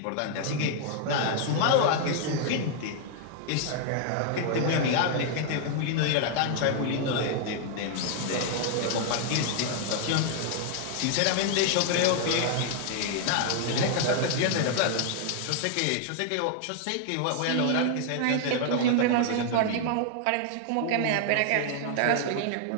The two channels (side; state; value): both; different; correlation 0.00